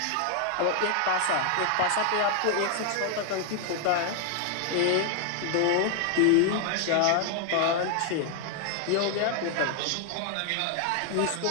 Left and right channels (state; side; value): different; both; correlation 0.00